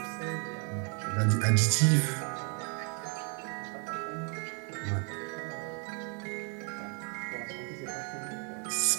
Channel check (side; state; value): left; quieter; 37.4 dB